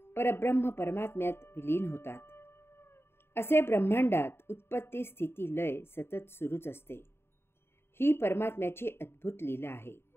परब्रह्म परमात्म्यात विलीन होतात. असे ब्रह्मांडात उत्पत्ती, स्थिती, लय सतत सुरूच असते. ही परमात्म्याची अद्भुत लीला आहे.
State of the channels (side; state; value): right; late; 0.11 ms